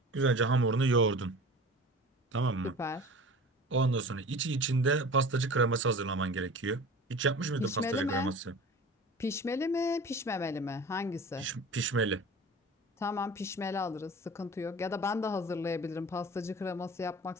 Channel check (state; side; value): normal; both; correlation 0.39